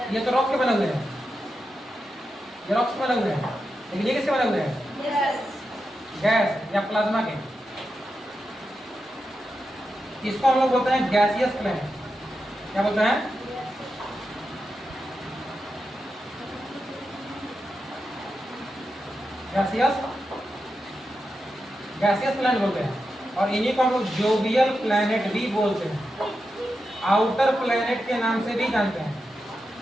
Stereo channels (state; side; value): normal; both; correlation 0.88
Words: ये तो रॉक के बने हुए हैं, ये रॉक्स के बने हुए हैं। लेकिन ये किसके बने हुए हैं? गैस या प्लाज्मा के। इसको हम लोग बोलते हैं गैसियस प्लैनेट। क्या बोलते हैं? गैसियस प्लैनेट बोलते हैं। और इन्हीं को हम लोग जोवियल प्लैनेट भी बोलते हैं। आउटर प्लैनेट के नाम से भी जानते हैं